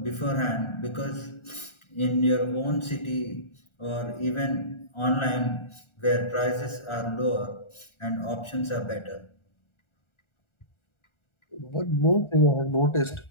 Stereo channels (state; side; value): late; right; 1.4 ms